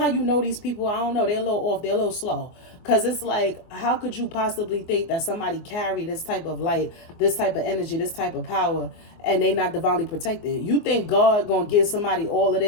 you know these people, I don't know, they're a little off, they're a little slow. Because it's like, how could you possibly think that somebody carry this type of light, this type of energy, this type of power, and they not divinely protected? You think God gonna give somebody all of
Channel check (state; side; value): late; right; 24 ms